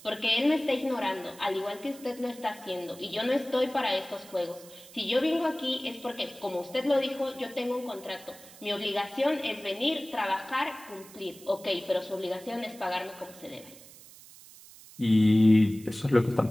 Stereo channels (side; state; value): right; noise; hiss, 20 dB below the sound